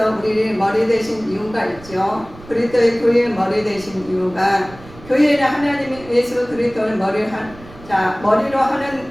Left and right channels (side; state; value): right; noise; rumble, 20 dB below the sound